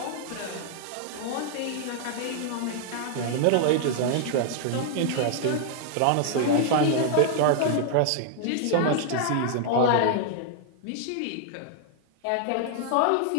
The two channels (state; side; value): different; both; correlation -0.01